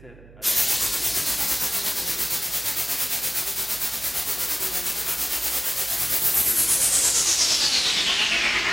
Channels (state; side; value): noise; right; hum, 22 dB below the sound